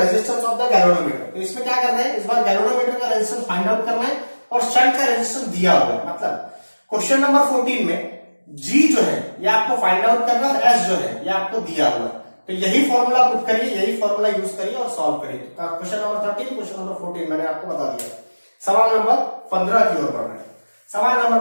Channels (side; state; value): both; inverted; correlation -1.00